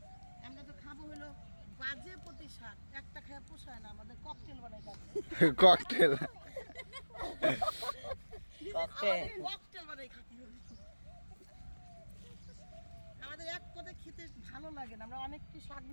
আমরা তো খাবো হলো বাজে প্রতি শাক একটা খেয়ে পোষায় না আমাদের ককটেল বানাই খাবো ককটেল ককটেল বানাই খাতি হবে আমাদের এক পদে খেতে ভালো লাগে না আমরা অনেক কি শাক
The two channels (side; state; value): both; inverted; correlation -1.00